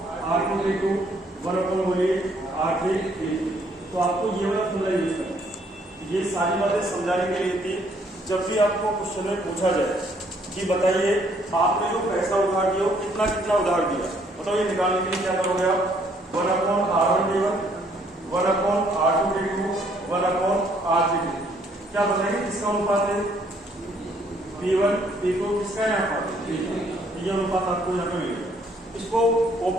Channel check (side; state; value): both; normal; correlation 0.66